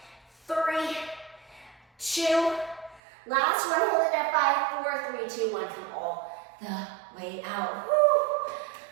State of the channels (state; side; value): drops out; left; at 3.0 s